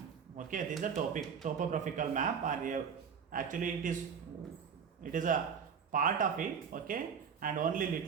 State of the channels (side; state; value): left; quieter; 6.9 dB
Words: Okay, this is the topographical map, or actually it is a part of it. Okay, and only